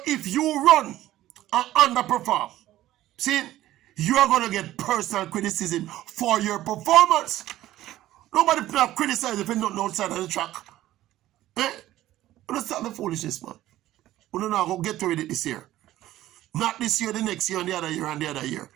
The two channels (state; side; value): quieter; left; 14.6 dB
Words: if you run and underperform, see, you are going to get personal criticism for your performance. Nobody criticize if you're not outside of the track. Let's start the foolishness, man. We don't know how to get rid of it this year. Not this year, the next year, and the other year, and the other year.